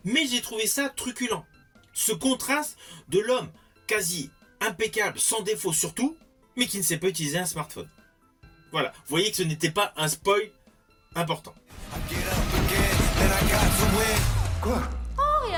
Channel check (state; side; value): identical; both; correlation 1.00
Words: mais j'ai trouvé ça truculent. Ce contraste de l'homme quasi impeccable, sans défaut surtout, mais qui ne sait pas utiliser un smartphone. Voilà, vous voyez que ce n'était pas un spoil important. Quoi? Oh,